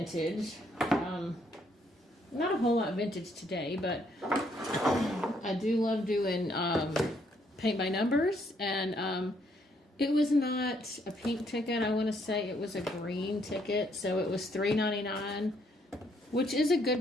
Not a whole lot vintage today, but I do love doing paint by numbers, and it was not a pink ticket. I want to say it was a green ticket, so it was $3.99, which is a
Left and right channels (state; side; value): normal; both; correlation 0.70